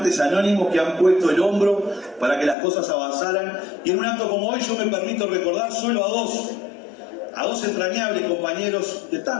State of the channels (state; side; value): drops out; right; at 2.6 s